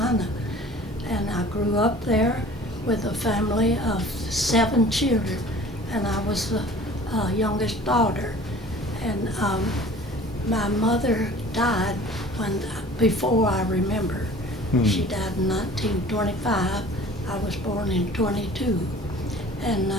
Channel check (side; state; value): both; normal; correlation 0.46